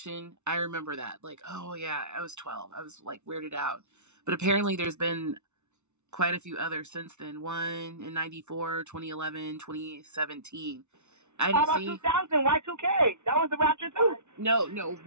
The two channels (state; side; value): late; left; 0.82 ms